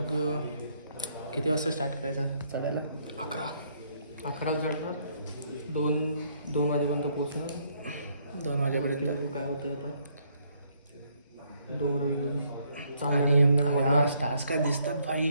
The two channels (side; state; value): both; inverted; correlation -0.70